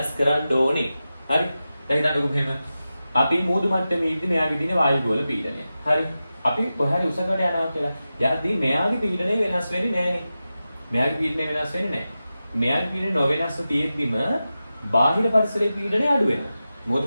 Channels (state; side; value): inverted; both; correlation -0.93